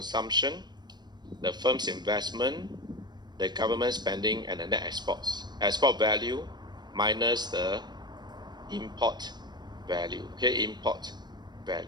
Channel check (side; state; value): left; late; 0.21 ms